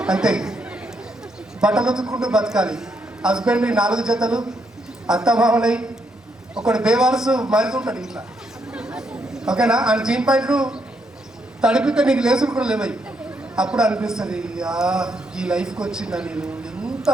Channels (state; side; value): normal; both; correlation 0.76